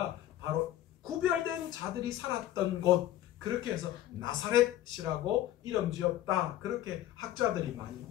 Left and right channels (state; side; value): quieter; right; 13.1 dB